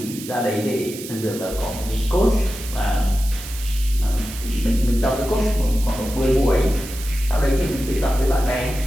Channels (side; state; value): right; noise; hiss, 12 dB below the sound